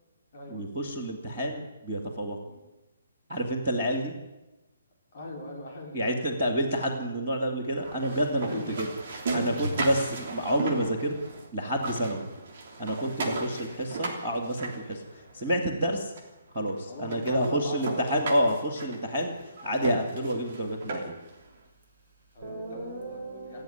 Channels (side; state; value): both; inverted; correlation -0.69